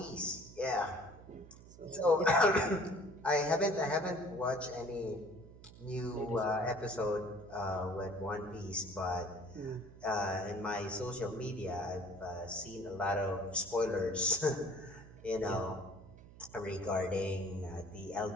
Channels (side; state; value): right; noise; hum, 19 dB below the sound